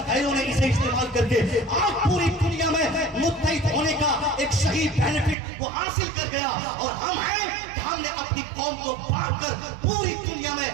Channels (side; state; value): left; drops out; at 5.4 s